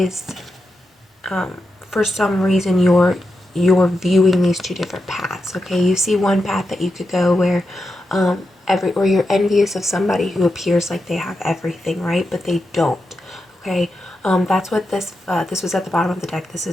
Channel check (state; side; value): normal; both; correlation 0.87